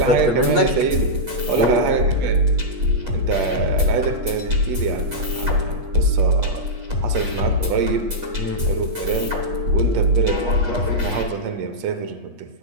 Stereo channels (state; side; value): late; left; 8.4 ms